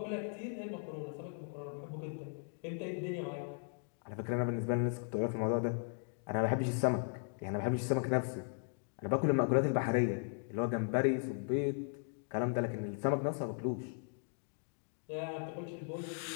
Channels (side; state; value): right; silent; 53 dB below the other